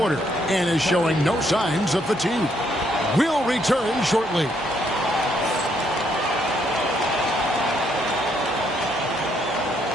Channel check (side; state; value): both; normal; correlation 0.72